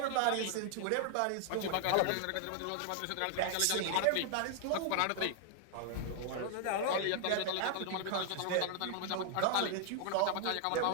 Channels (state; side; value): different; both; correlation 0.00